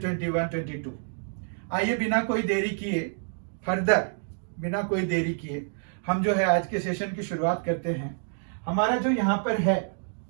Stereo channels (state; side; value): silent; left; digital silence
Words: आइए बिना कोई देरी किए हम जो है आज के सेशन की शुरुआत करते हैं। हमारा जो यहाँ पर है